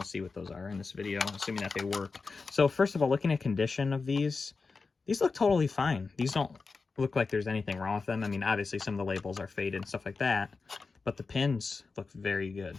see what those are in this video, assuming that they work. So first of all, looking at condition of these look totally fine. These don't look like there's anything wrong with them. I mean, obviously some of the labels are faded and stuff like that, but the pins look very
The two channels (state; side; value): quieter; right; 4.4 dB